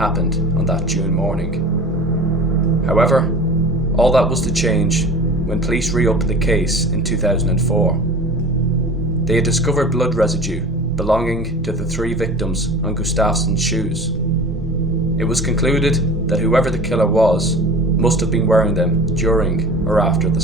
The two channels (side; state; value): both; normal; correlation 0.39